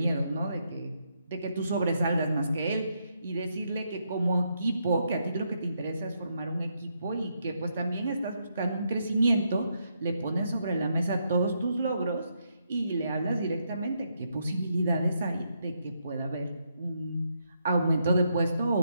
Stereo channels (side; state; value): both; inverted; correlation -0.78